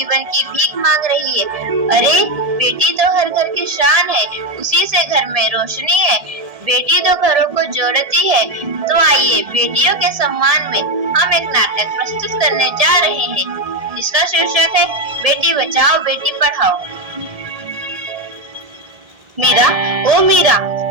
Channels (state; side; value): late; left; 1.7 ms